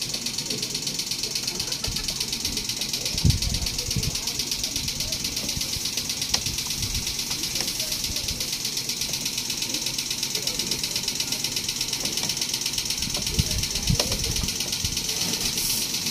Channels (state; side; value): identical; both; correlation 1.00